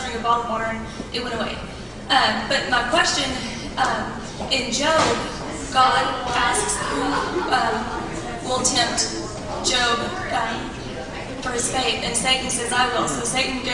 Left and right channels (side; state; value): both; identical; correlation 1.00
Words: drinking bottled water, and it went away. But my question, in Job, God asks who will tempt Job for his faith, and Satan says, I will. So Satan